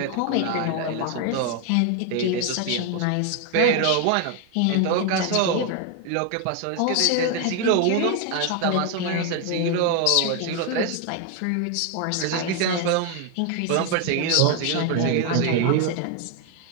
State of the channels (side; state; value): both; different; correlation 0.01